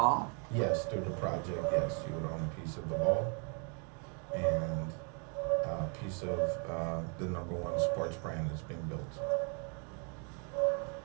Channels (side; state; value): left; quieter; 38.2 dB